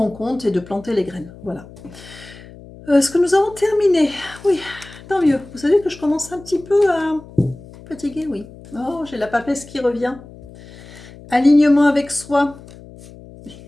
compte et de planter les graines. Voilà. Est-ce que nous avons terminé? Oui, tant mieux. Vous savez que je commence un petit peu à fatiguer, oui. Oh, j'ai la papesse qui revient. Alignement avec soi.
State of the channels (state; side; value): noise; left; hum, 19 dB below the sound